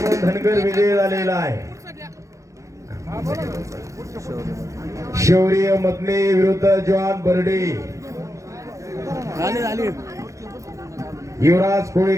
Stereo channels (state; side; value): late; left; 0.15 ms